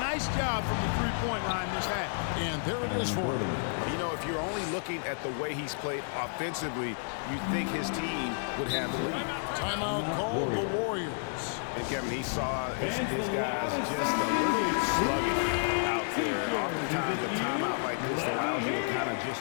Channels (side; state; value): right; silent; 57 dB below the other